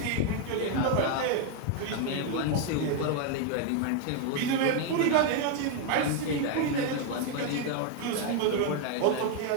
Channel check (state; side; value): different; both; correlation 0.01